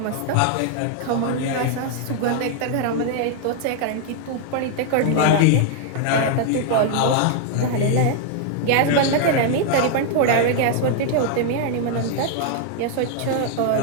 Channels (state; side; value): different; both; correlation 0.00